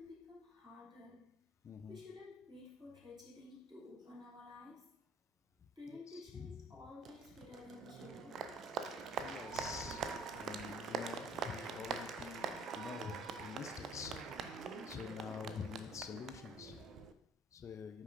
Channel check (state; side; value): normal; both; correlation 0.57